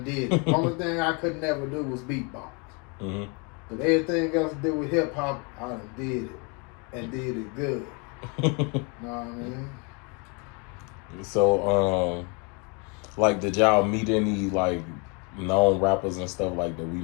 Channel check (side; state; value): right; quieter; 33.1 dB